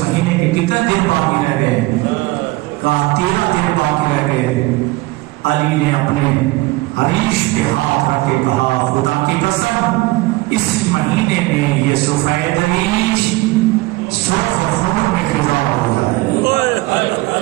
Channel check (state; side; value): quieter; left; 20.5 dB